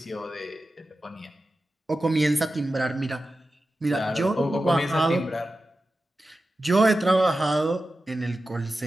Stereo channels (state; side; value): normal; both; correlation 0.93